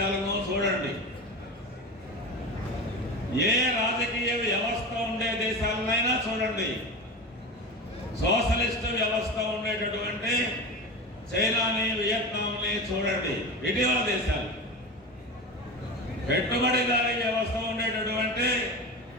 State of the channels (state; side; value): normal; both; correlation 0.27